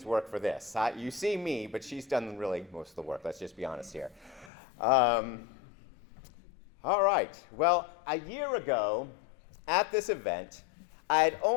work for this. You see me, but she's done really most of the work. Let's just be honest here. All right. Well, a year ago at this event, I had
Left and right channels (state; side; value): drops out; right; at 4.5 s